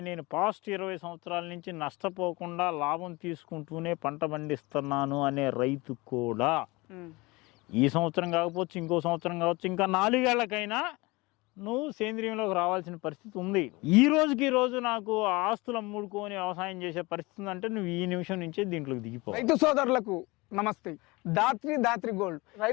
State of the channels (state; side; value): quieter; right; 23.7 dB